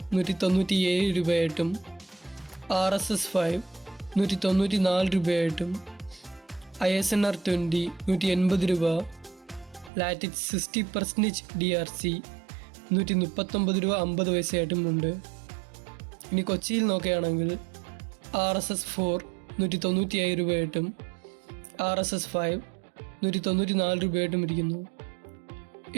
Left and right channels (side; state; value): left; drops out; at 9.9 s